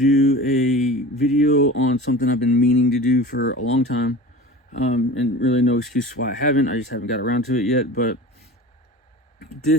a video on something I've been meaning to do for a long time, and really no excuse why I haven't. I just haven't got around to it yet. But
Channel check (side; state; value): both; normal; correlation 0.36